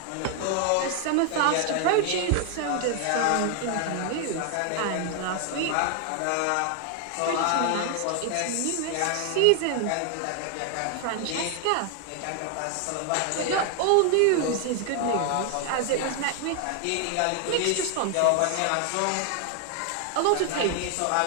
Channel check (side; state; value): both; different; correlation 0.00